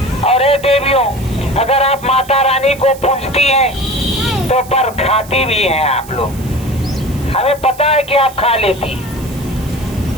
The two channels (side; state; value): right; noise; hiss, 19 dB below the sound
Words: और हे देवियों, अगर आप माता रानी को पूजती हैं तो पर खाती भी हैं आप लोग, हमें पता है कि आप खा लेती।